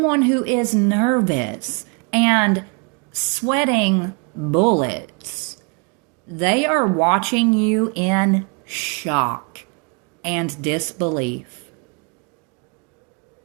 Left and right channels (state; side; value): quieter; left; 34.5 dB